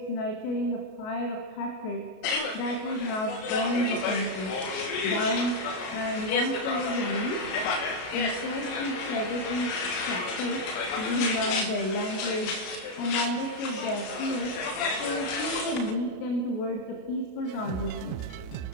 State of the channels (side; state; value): right; late; 33 ms